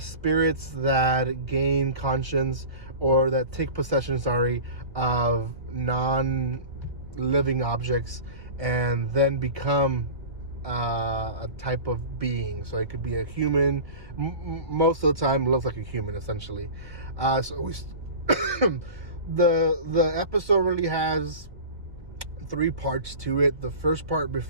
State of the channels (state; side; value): late; left; 1.7 ms